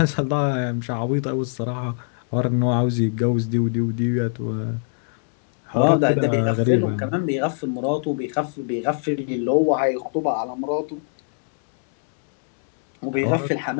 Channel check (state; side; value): silent; right; 62 dB below the other